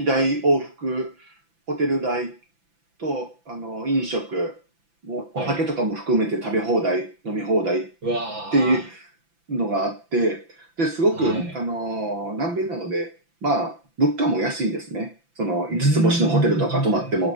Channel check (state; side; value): late; left; 5.9 ms